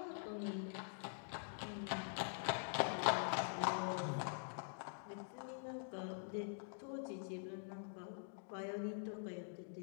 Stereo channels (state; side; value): silent; right; digital silence